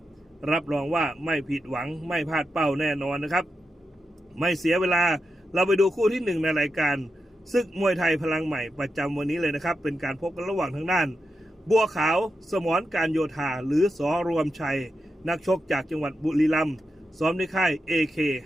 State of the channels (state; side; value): normal; both; correlation 0.88